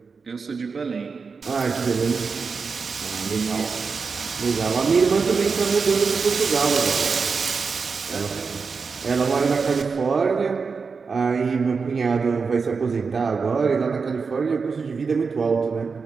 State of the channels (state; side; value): quieter; left; 5.0 dB